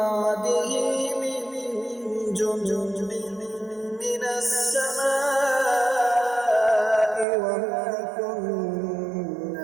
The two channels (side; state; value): left; drops out; at 7.2 s